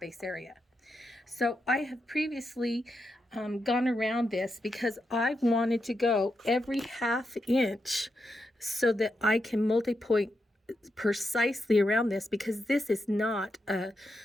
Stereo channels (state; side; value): normal; both; correlation 0.85